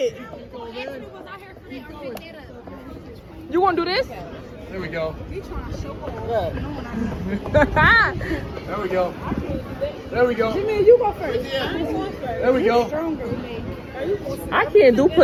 You gonna do this? There we go. There There we go. There we go. Jimmy, you go first. There we go. I can't do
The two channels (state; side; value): identical; both; correlation 1.00